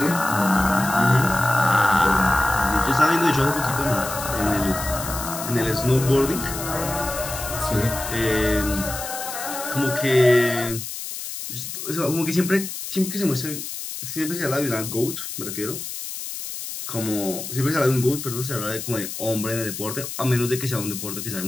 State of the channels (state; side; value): noise; left; hiss, 7 dB below the sound